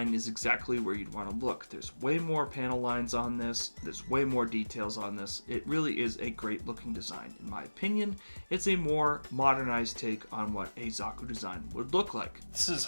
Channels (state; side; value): inverted; both; correlation -1.00